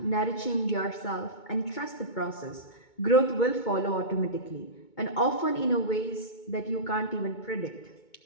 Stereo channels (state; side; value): late; right; 2.2 ms